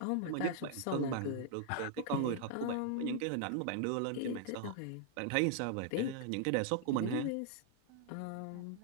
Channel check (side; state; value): both; different; correlation -0.01